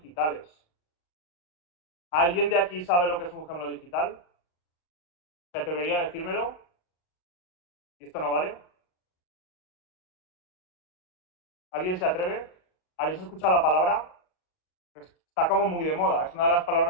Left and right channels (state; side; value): late; right; 38 ms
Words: ¿Alguien de aquí sabe lo que es un gemelo digital? ¿Se atrevería a decírmelo? ¿Y esto no vale? ¿Alguien se atreve? ¿Habéis escuchado la palabra? Está como muy de moda. Es una de las